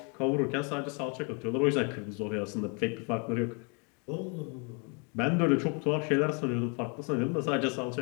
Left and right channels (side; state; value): right; quieter; 35.6 dB